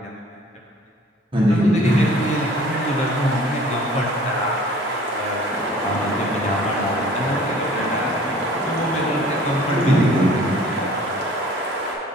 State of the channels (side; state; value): both; normal; correlation 0.50